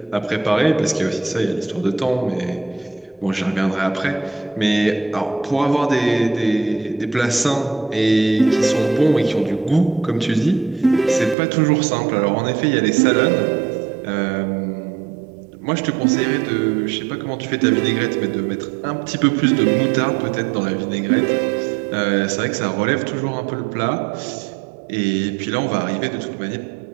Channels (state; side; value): drops out; left; at 11.4 s